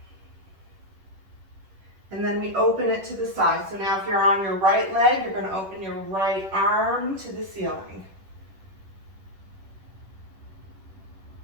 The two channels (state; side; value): late; left; 10 ms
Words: And then we open it to the side. So now if you're on your right leg, you're going to open your right arm to the ceiling.